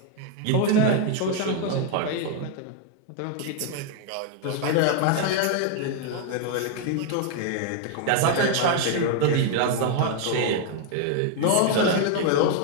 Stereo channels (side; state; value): both; different; correlation 0.00